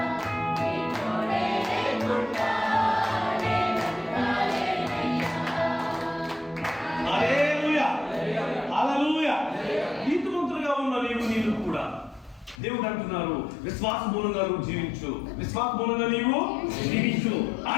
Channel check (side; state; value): right; drops out; at 12.6 s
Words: హల్లెలూయా. హల్లెలూయా. నీతిమంతులుగా ఉన్న నీవు కూడా దేవుడు అంటున్నారు, విశ్వాస మూలంగా నువ్వు జీవించు, విశ్వాస మూలంగా నీవు జీవించు.